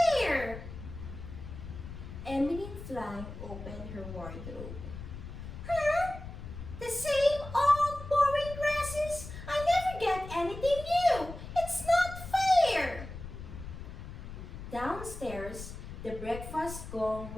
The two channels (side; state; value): left; noise; rumble, 11 dB below the sound